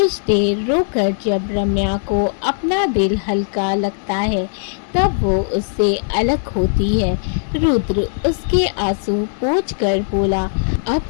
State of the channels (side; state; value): right; silent; digital silence